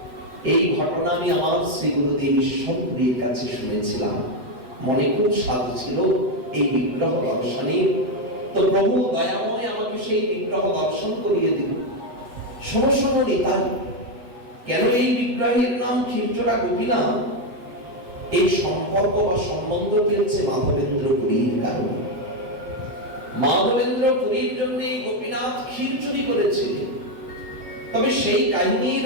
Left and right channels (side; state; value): left; late; 8.0 ms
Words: এই ঘটনা আমি আমার শ্রী গুরুদেব ঈশ্বরের কাছে শুনেছিলাম। মনে খুব স্বাদ ছিল এই বিগ্রহ দর্শনে। তো প্রভু দয়াময় আমাকে সেই বিগ্রহ দর্শন করিয়ে দিল। শোনো নিতাই, কেন এই বিগ্রহের নাম ক্ষীরচোরা গোপীনাথ? এই সম্পর্ক বা সম্বন্ধ চলছে মাধবেন্দ্র পুরীর কারণে। মাধবেন্দ্র পুরীর জন্য গোপীনাথ ক্ষীর চুরি করেছিলেন। তবে সেই কাহিনীর